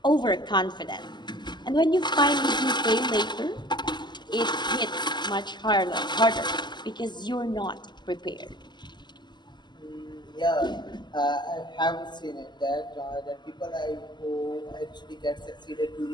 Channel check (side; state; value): right; late; 0.21 ms